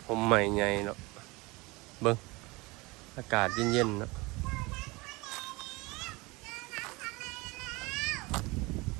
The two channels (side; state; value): left; quieter; 24.2 dB